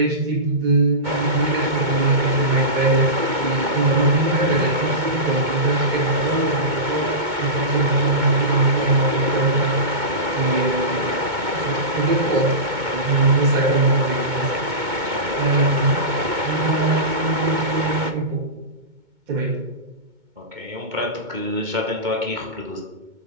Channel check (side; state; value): left; late; 2.2 ms